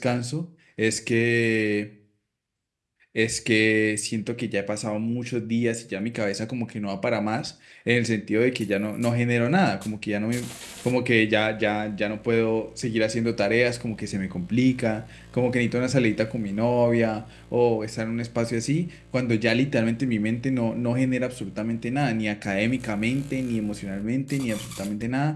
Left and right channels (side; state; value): both; identical; correlation 1.00